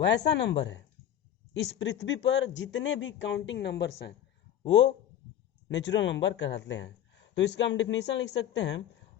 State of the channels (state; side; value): quieter; right; 10.8 dB